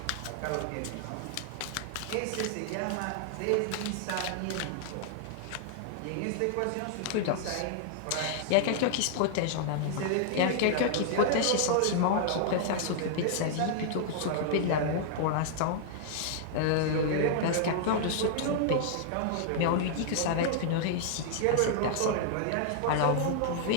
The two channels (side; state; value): both; different; correlation -0.01